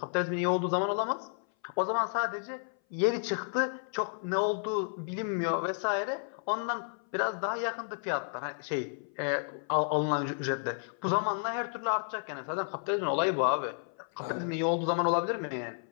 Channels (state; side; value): silent; right; 57 dB below the other